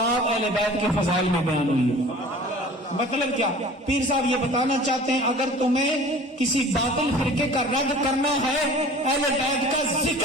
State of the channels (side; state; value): both; normal; correlation 0.44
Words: اہل بیت کے فضائل میں بیان ہوئی ہے. مطلب کیا؟ پیر صاحب یہ بتانا چاہتے ہیں اگر تمہیں کسی باطل فرقے کا رد کرنا ہے اہل بیت کا